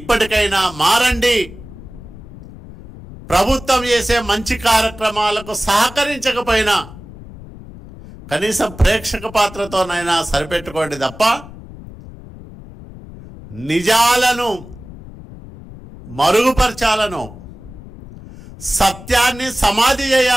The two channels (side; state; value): left; noise; rumble, 16 dB below the sound